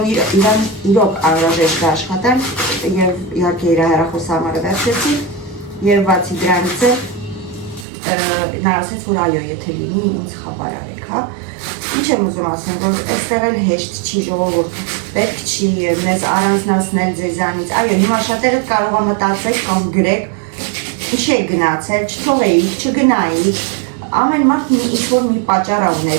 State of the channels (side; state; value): left; drops out; at 7.9 s